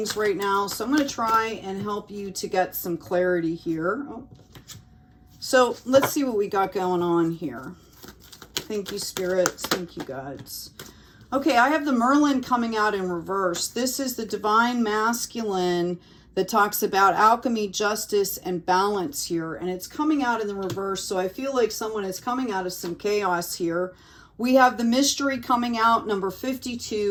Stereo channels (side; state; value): both; identical; correlation 1.00